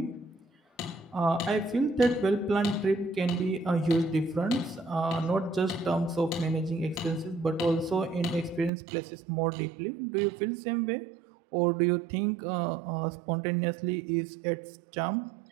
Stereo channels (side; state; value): left; drops out; at 8.7 s